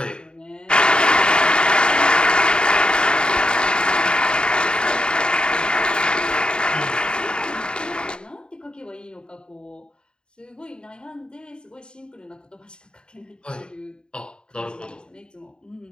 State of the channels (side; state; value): right; late; 0.049 ms